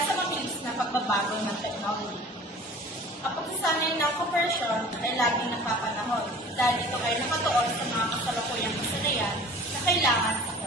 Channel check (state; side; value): normal; both; correlation 0.44